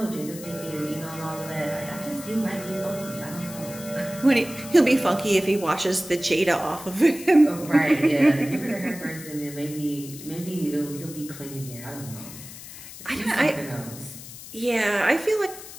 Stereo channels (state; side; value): noise; left; hiss, 14 dB below the sound